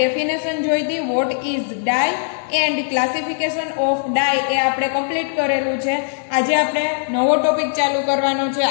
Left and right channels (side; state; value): right; silent; digital silence